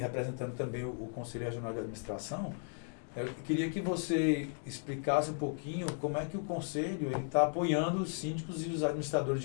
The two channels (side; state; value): right; silent; 54 dB below the other